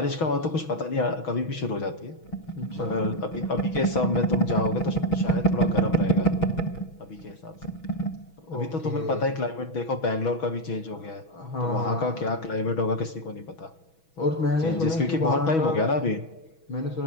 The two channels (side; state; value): right; late; 6.2 ms